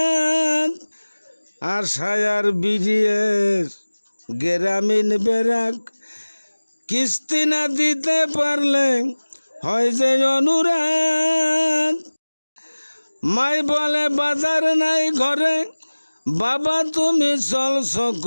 আশায় আর বিডিএর গ্রামীণ বেরাক কিস্তি না দিতে পারলে হয় যে অনুরাগ। মাই বলে বাজার নাই ঘরে, বাবা তুমি চলছ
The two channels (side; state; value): both; inverted; correlation -1.00